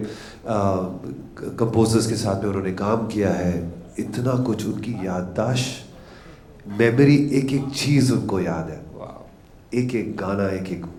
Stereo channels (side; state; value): both; identical; correlation 1.00